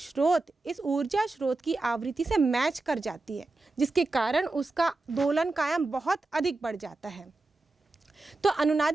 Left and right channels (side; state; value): left; quieter; 3.2 dB